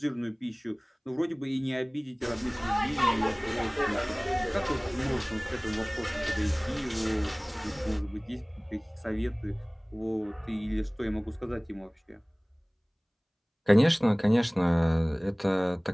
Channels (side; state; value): both; identical; correlation 1.00